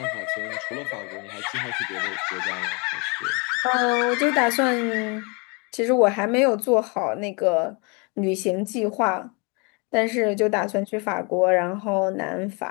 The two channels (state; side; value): quieter; right; 31.7 dB